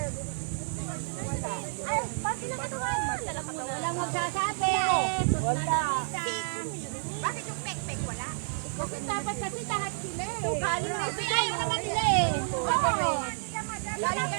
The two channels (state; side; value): silent; left; digital silence